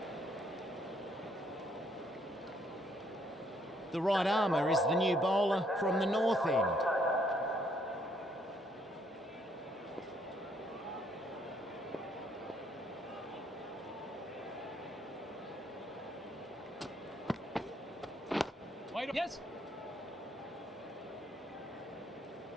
The right armour is the new bowler from the north end. Wait. Yes.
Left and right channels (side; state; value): both; normal; correlation 0.69